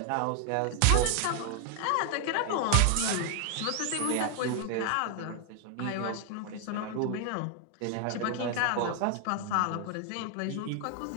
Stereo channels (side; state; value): both; different; correlation 0.00